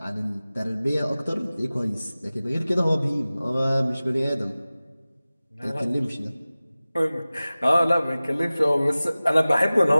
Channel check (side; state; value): both; inverted; correlation -0.97